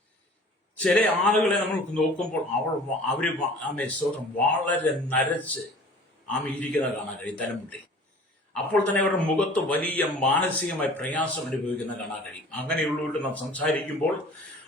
ചില ആളുകളെ നമ്മൾ നോക്കുമ്പോൾ അവര് സ്തോത്രം വളരെ നരച്ച് ഇരിക്കുന്ന കാണാൻ കഴിയും, തലമുട്ടി. അപ്പോൾ തന്നെ അവരുടെ മുഖത്ത് വലിയ മാനസികമായ പ്രയാസം അനുഭവിക്കുന്ന കാണാൻ കഴിയും. അങ്ങനെയുള്ളവരോട് നാം സംസാരിക്കുമ്പോൾ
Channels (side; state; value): both; normal; correlation 0.46